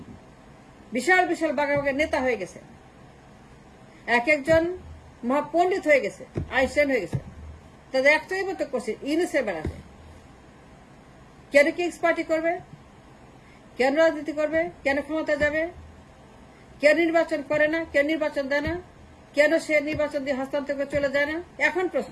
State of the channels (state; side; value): identical; both; correlation 1.00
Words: বিশাল বিশাল বাঘা বাঘা নেতা হয়ে গেছে, এক একজন মহাপণ্ডিত হয়ে গেছে, আইনস্টাইন হয়ে গেছে। তাদের একটাই মতো করছে ইউনুসের বেড়াতে। কেন কিংস পার্টি করবে, কেন রাজনীতি করবে, কেন ক্ষমতা যাবে, কেন নির্বাচন করে না, কেন নির্বাচন দেয় না, কেন সে নির্বাচন দিয়ে হস্তান্তর করে চলে যায় না? এখন